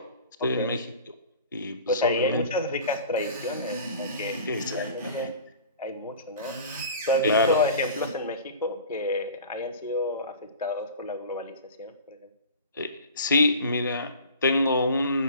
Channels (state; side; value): inverted; both; correlation -0.41